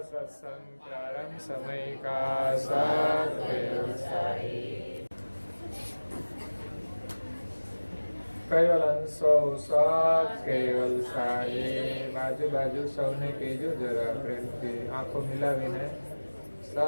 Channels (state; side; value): inverted; both; correlation -1.00